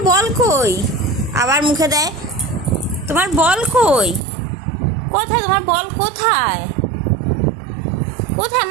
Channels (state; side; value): drops out; left; at 4.2 s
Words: বল কই? আবার মুখে দেয়। তোমার বল কই? কোথায় তোমার বল? কোথায় কোথায়